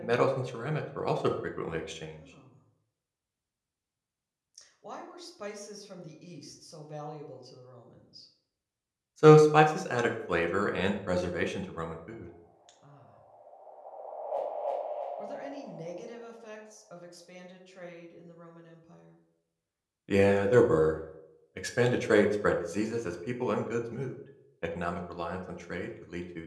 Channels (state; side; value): identical; both; correlation 1.00